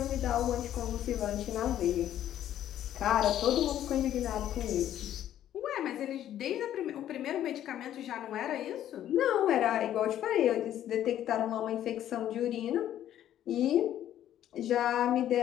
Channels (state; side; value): quieter; right; 11.6 dB